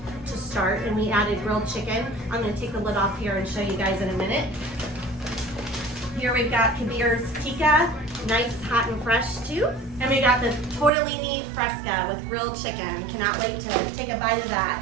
to start, and we added grilled chicken. I'm gonna take the lid off here and show you guys in a minute. Here we've got Kabir's Tikka, nice, hot and fresh too. And we got the Tortellini Fresca with grilled chicken. Cannot wait to take a bite of that.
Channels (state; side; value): drops out; left; at 10.9 s